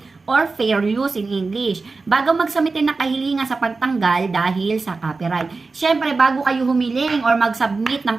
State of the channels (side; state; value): left; quieter; 4.0 dB